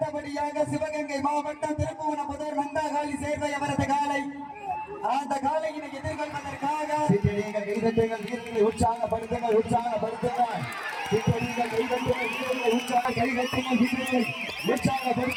சிவகங்கை மாவட்டம் திருப்புவனம் முதல் நந்தாகாலி சேர்வை அவரது காலை. அந்த காலையினை எதிர்கொள்வதற்காக சீட்டி அடியுங்கள், கைதட்டுங்கள், வீரர்களை உற்சாகப்படுத்துங்கள், உற்சாகப்படுத்துங்கள். சீட்டி அடியுங்கள், கைதட்டுங்கள், வீரர்களை கைதட்டுங்கள், வீரர்களை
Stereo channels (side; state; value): both; identical; correlation 1.00